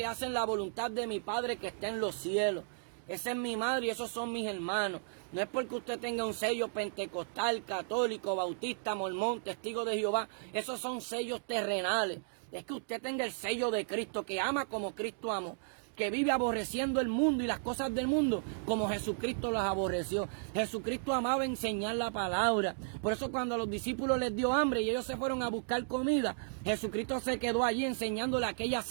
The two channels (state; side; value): silent; left; digital silence